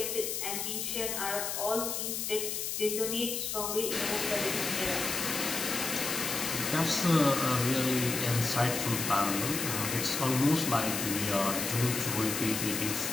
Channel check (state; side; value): noise; left; hiss, 2 dB below the sound